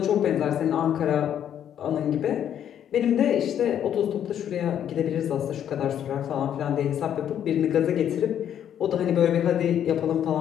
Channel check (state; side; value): quieter; right; 9.8 dB